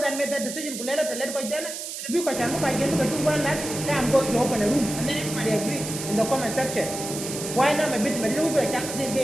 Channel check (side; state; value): right; noise; hiss, 7 dB below the sound